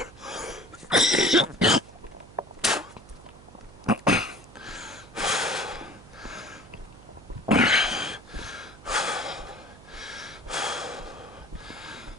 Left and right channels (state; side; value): noise; right; hum, 20 dB below the sound